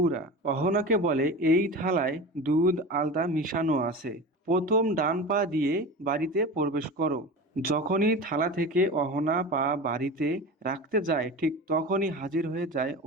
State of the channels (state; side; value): normal; both; correlation 0.30